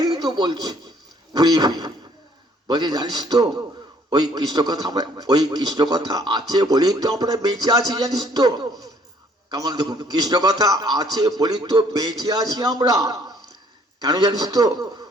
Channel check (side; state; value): both; normal; correlation 0.61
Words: তো বলছে, ঘুরিয়ে ফিরে বলছে জানিস তো ওই কৃষ্ণ কথা, আমরা ওই কৃষ্ণ কথা আছে বলেই তো আমরা বেঁচে আছি, জানিস তো? কেমন দেখুন, কৃষ্ণ কথা আছে বলি তো বেঁচে আছি আমরা। কেন জানিস তো?